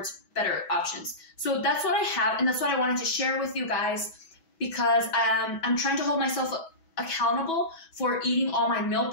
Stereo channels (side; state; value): right; late; 6.1 ms